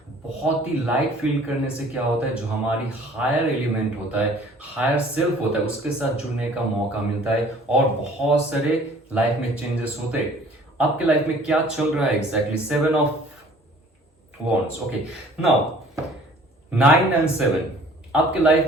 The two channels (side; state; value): both; normal; correlation 0.52